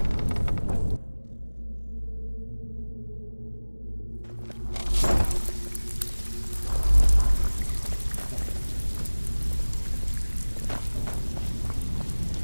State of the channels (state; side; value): inverted; both; correlation -1.00